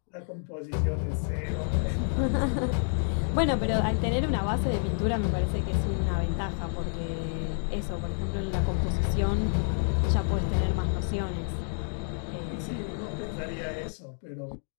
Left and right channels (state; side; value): silent; right; 59 dB below the other